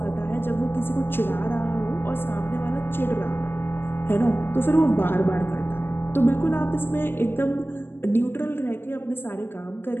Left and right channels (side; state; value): right; late; 0.10 ms